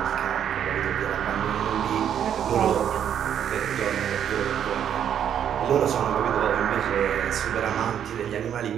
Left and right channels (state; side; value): quieter; left; 9.2 dB